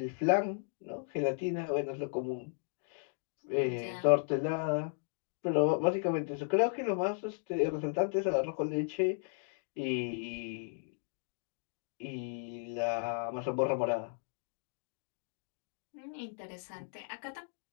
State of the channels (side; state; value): right; silent; digital silence